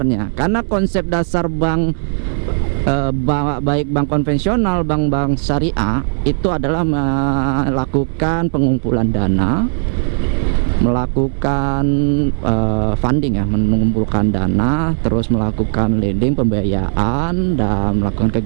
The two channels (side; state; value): left; silent; digital silence